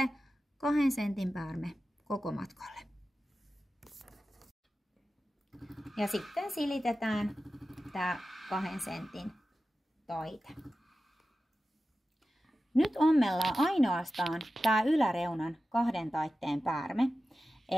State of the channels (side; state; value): both; normal; correlation 0.93